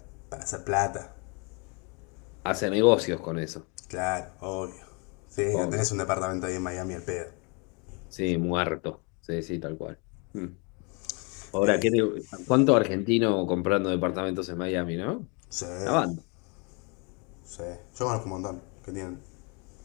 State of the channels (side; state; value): right; quieter; 32.8 dB